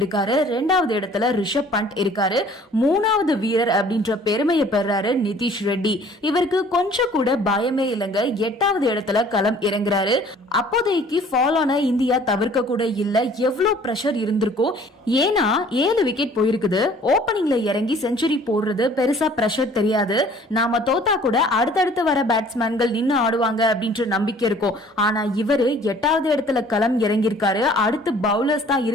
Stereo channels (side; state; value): both; normal; correlation 0.53